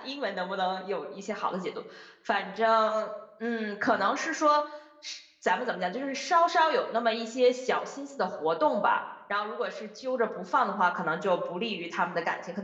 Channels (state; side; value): identical; both; correlation 1.00